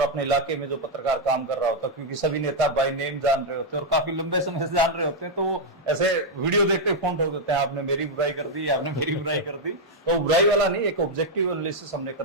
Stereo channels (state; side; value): normal; both; correlation -0.01